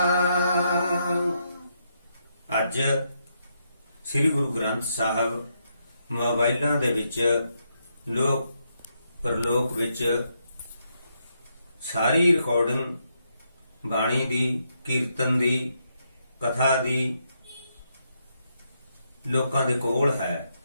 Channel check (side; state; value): both; inverted; correlation -0.79